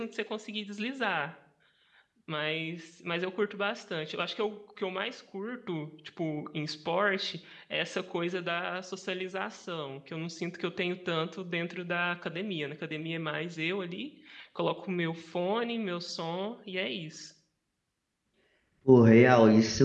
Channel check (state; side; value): identical; both; correlation 1.00